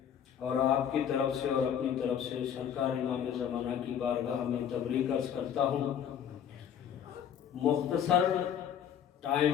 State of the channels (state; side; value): quieter; right; 8.9 dB